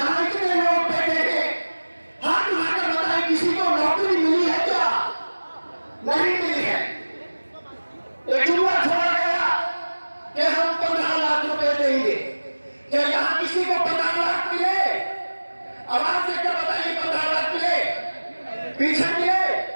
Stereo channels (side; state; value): both; inverted; correlation -1.00